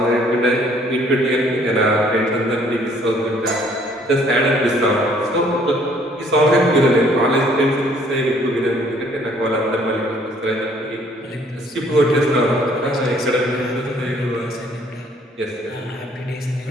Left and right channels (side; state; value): both; normal; correlation 0.61